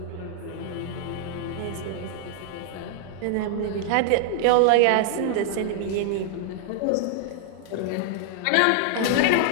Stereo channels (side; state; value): both; different; correlation -0.01